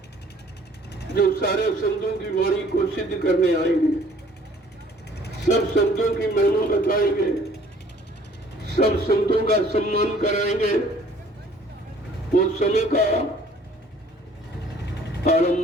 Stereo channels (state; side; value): normal; both; correlation 0.55